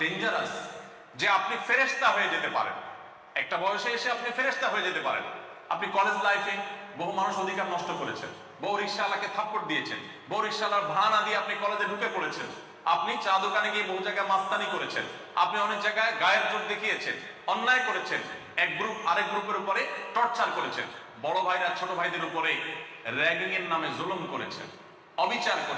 যে আপনি ফেরেশতা হয়ে যেতে পারেন, একটা বয়সে এসে আপনি ফেরেশতা হয়ে যেতে পারেন। আপনি কলেজ লাইফে বহু মানুষ অধিকার নষ্ট করেছেন, বহু রিকশাওয়ালাকে থাপ্পড় দিয়েছেন, বহু রিকশাওয়ালার ভাড়া না দিয়ে আপনি কলেজে ঢুকে পড়েছেন, আপনি চা দোকানে গিয়ে বহু জায়গায় মাস্তানি করেছেন, আপনি অনেক জায়গায় গায়ের জোর দেখিয়েছেন, অন্যায় করেছেন, এক গ্রুপ আরেক গ্রুপের উপরে টর্চার করেছেন, বড় ভাইরা ছোট ভাইদের উপরে র্যাগিং এর নামে জুলুম করেছেন, অবিচার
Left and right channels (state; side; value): identical; both; correlation 1.00